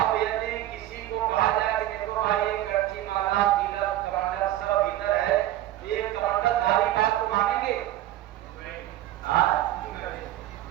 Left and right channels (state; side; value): quieter; left; 14.0 dB